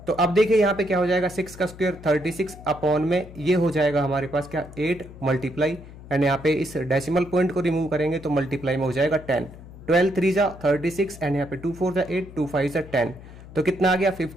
तो अब देखिए यहाँ पे क्या हो जाएगा 6 का स्क्वायर 36 अपॉन में ये हो जाएगा हमारे पास क्या 8 मल्टीप्लाई एंड यहाँ पे इस डेसिमल पॉइंट को रिमूव करेंगे तो मल्टीप्लाई में हो जाएगा 10। 12 3 जा 36 एंड यहाँ पे 2 4 जा 8 2 5 जा 10, तो कितना आ गया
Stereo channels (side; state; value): left; noise; hum, 17 dB below the sound